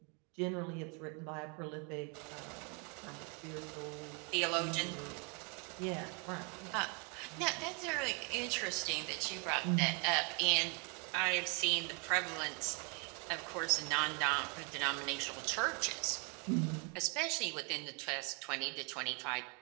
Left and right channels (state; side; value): quieter; left; 34.3 dB